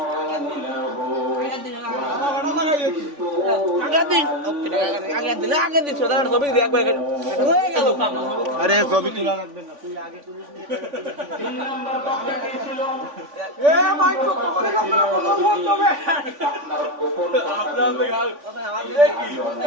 আরে ছবি তোলা লাগবে না, তুই আগে তুলিস নি। 3 নাম্বার পাপ কি ছিল? আপনার গোপন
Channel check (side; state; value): left; late; 3.5 ms